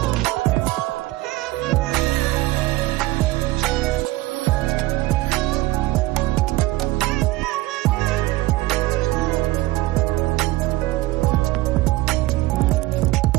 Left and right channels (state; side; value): quieter; left; 18.5 dB